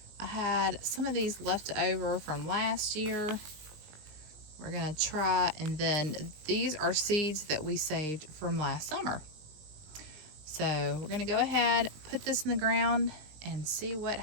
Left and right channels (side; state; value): left; late; 19 ms